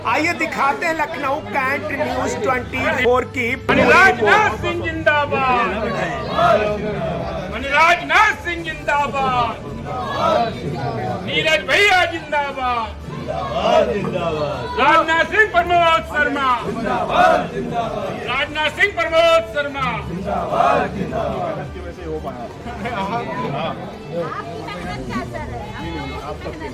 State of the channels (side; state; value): both; identical; correlation 1.00